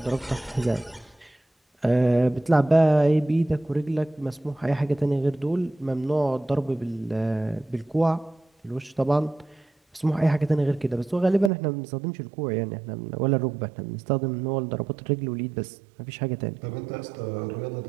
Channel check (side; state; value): left; drops out; at 11.5 s